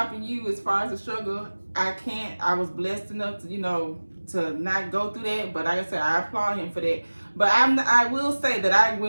you, as far as the struggle, I was blessed enough to, you know, to not go through that. But like I said, I applaud him for that. But I will say that I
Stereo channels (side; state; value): both; inverted; correlation -1.00